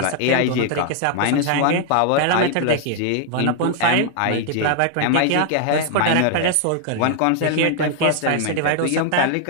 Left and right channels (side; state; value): both; different; correlation 0.00